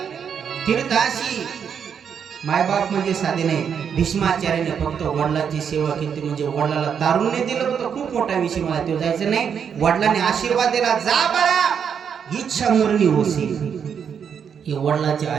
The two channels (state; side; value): quieter; left; 7.4 dB